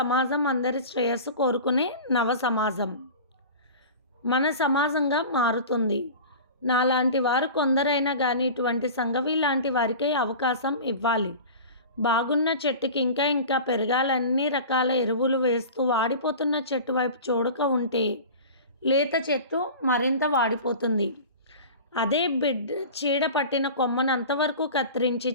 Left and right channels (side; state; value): both; inverted; correlation -0.35